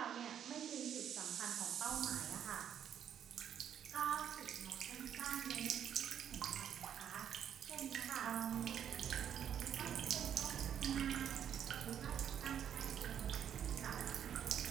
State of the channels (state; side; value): quieter; left; 9.3 dB